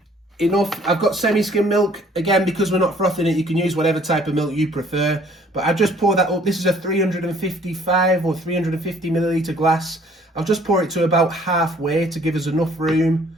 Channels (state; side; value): normal; both; correlation 0.58